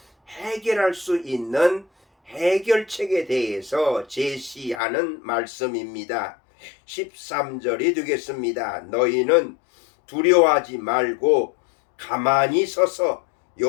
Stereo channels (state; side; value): drops out; right; at 4.8 s